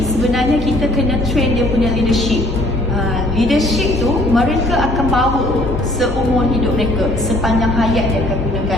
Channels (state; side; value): noise; left; hum, 8 dB below the sound